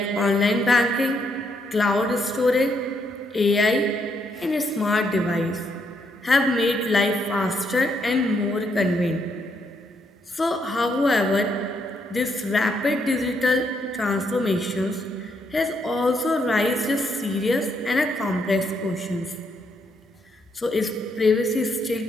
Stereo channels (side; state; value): both; normal; correlation 0.75